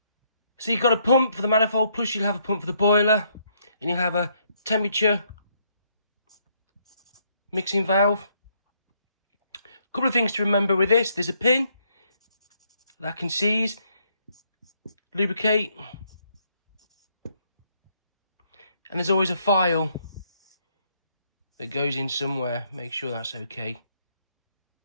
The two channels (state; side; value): inverted; both; correlation -0.72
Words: So you've got a pump for the manifold, plus you'll have a pump for the boiler, and you'll have a temperature mixing valve. A couple of things to remember with this. There's a pin that can seize, lubricate, and there's always a file that goes in somewhere. Make sure that's okay.